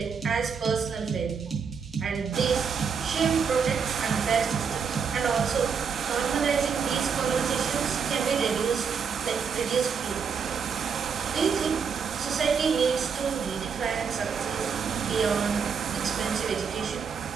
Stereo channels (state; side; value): quieter; left; 6.2 dB